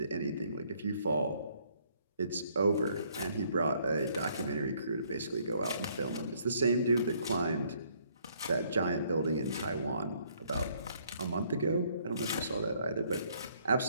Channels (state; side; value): inverted; both; correlation -0.66